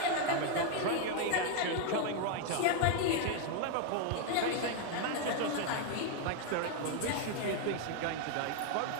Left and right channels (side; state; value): both; different; correlation 0.01